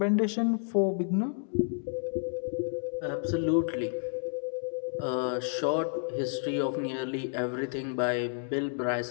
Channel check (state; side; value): silent; right; digital silence